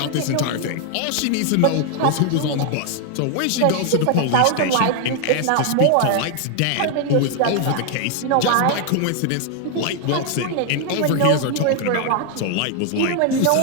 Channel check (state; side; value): different; both; correlation 0.00